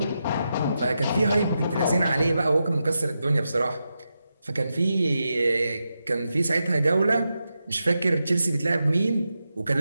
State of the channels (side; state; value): both; inverted; correlation -0.88